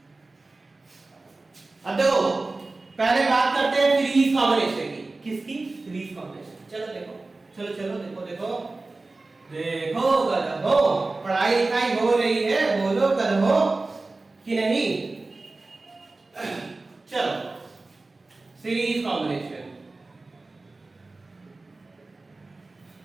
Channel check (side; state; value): left; quieter; 3.3 dB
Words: अब देखो पहले बात करते हैं सीरीज कॉम्बिनेशन की। किसकी? Series combination. चलो देखो, चलो चलो देखो देखो देखो गधो, पढ़ाई लिखाई हो रही है, बोलो गधो कि नहीं? चलो सीरीज कॉम्बिनेशन।